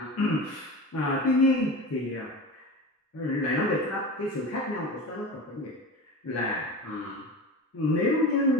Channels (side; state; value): both; normal; correlation 0.30